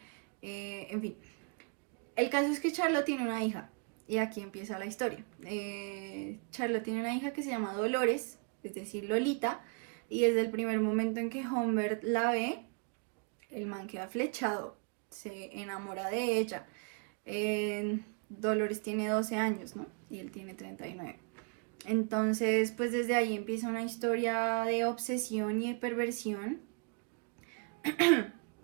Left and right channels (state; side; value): quieter; left; 36.9 dB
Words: en fin. El caso es que Charlotte tiene una hija, y aquí empieza la historia. Charlotte tiene una hija que se llama Dolores, es decir, Lolita, y desde el primer momento en que Humbert la ve, el man queda flechado. se enamora de ella. Dolores tiene 12 años, ¿no? Y él tiene 39. Entonces, pues desde ahí empieza una historia de obsesión y de perversión